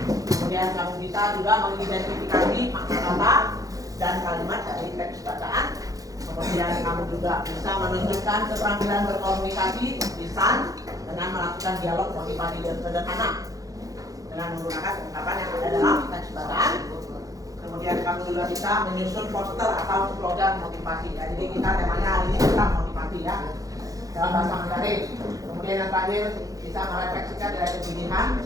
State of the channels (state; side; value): late; left; 0.17 ms